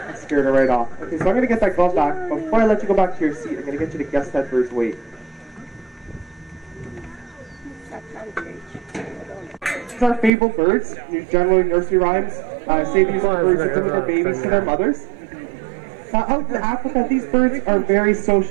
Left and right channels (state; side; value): drops out; left; at 10.3 s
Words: Scared her right off. Okay, so I'm going to get that glove back. But before I let you go back to your seat, I'm going to get you to guess that bird's weight. These are fabled birds. Generally, nursery rhymes say these are birds that deliver babies to their mothers. Now, out in Africa, these birds are very